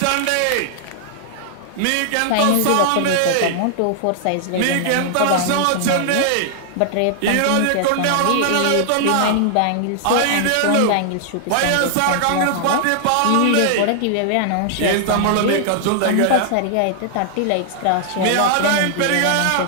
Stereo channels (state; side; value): different; both; correlation -0.01